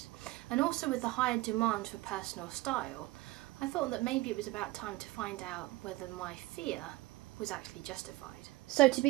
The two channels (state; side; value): quieter; left; 19.6 dB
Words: and also with the higher demand for personal style, I thought that maybe it was about time to find out whether my fear was actually justified. So to